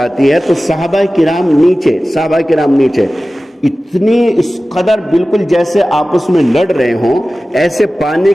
ہے تو صحابہ کرام نیچے اتنی اس قدر بالکل جیسے آپس میں لڑ رہے ہوں، ایسے پانی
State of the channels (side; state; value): both; normal; correlation 0.96